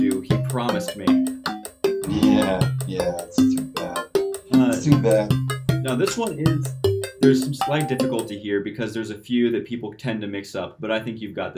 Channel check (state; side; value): identical; both; correlation 1.00